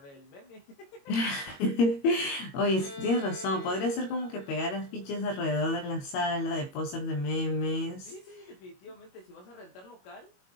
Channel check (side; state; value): right; late; 22 ms